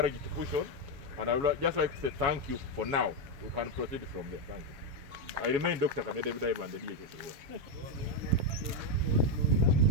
to push on, and I would just like to say thank you for now. We can proceed from there. Thank you. I remain Dr. Kamede David and the DHS.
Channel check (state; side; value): late; left; 7.1 ms